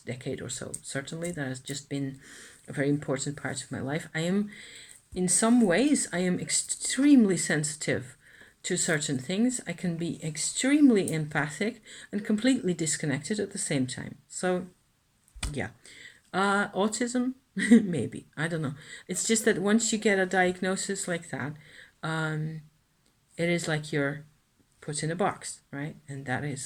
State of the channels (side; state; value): both; identical; correlation 1.00